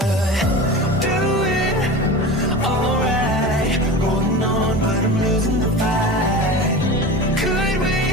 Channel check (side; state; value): both; normal; correlation 0.31